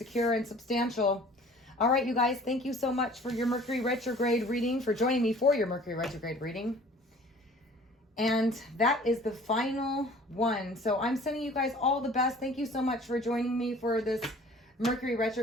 and substantial. All right, you guys, thank you so much for your Mercury retrograde reading, for joining me for your Mercury retrograde reading. And that is the final one. So I'm sending you guys all the best. Thank you so much for joining me for this Mercury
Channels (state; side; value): normal; both; correlation 0.49